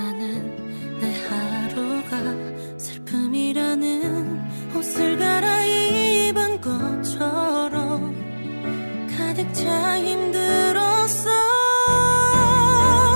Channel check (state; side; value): inverted; both; correlation -1.00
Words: 내 하루가 슬픔이라는 옷을 갈아입은 것처럼 가득 차 힘들었어.